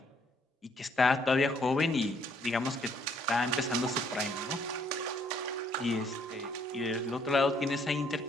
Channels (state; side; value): normal; both; correlation 0.66